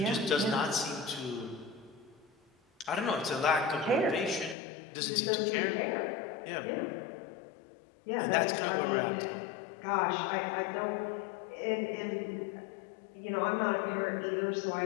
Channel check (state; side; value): drops out; right; at 4.5 s